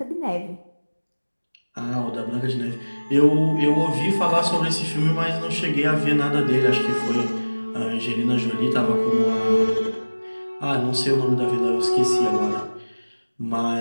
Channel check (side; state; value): both; inverted; correlation -1.00